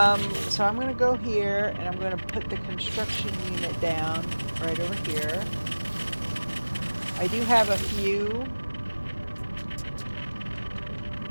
so I'm going to go here, and I'm going to put the construction unit down right over here. I do have a few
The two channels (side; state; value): both; inverted; correlation -1.00